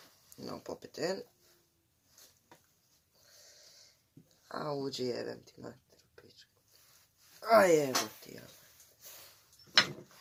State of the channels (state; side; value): identical; both; correlation 1.00